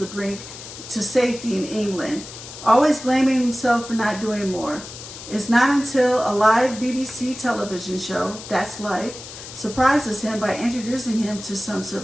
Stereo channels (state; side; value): noise; left; hiss, 13 dB below the sound